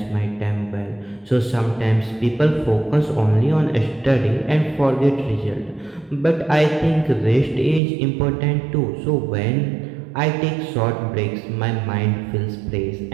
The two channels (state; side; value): drops out; left; at 7.8 s